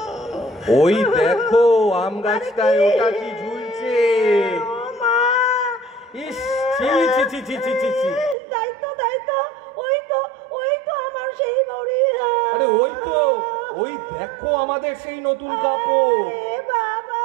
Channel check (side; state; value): left; drops out; at 8.3 s